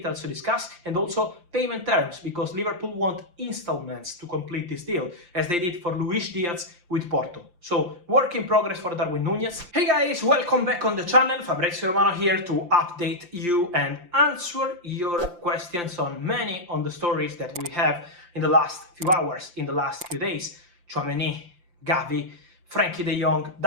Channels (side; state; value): left; late; 5.8 ms